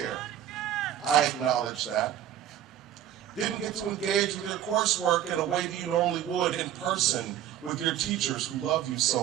I acknowledge that. Didn't get to engage with your coursework in a way that you normally would in person with your teachers who love you so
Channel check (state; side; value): quieter; left; 11.0 dB